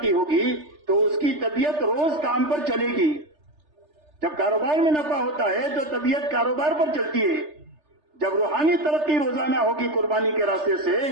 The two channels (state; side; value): late; left; 3.3 ms